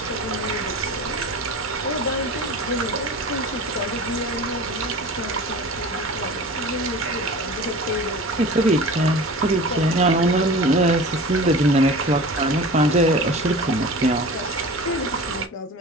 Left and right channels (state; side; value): normal; both; correlation 0.37